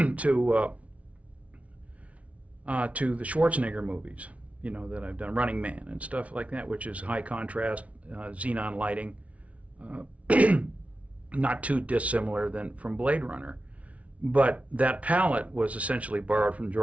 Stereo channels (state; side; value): late; left; 0.065 ms